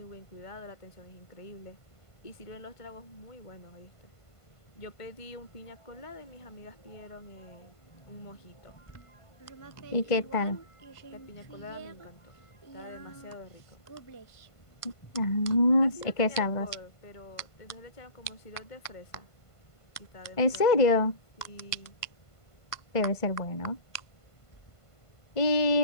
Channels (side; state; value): right; late; 1.5 ms